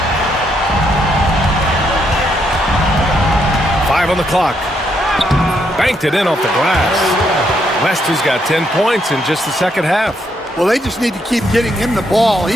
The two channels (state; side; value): normal; both; correlation 0.75